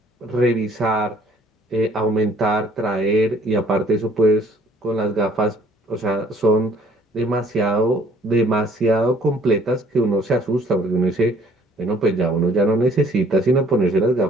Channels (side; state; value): both; normal; correlation 0.59